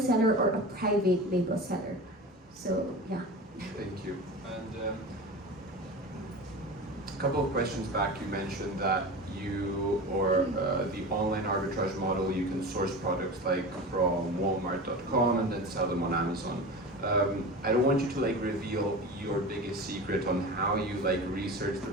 or a private label seller. So yeah. Thank you. And a couple of questions back, you mentioned that the online arbitrage model, you can source products from Walmart.com and then sell them on Amazon. I don't want you to reveal your biggest secret on how you research the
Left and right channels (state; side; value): normal; both; correlation 0.31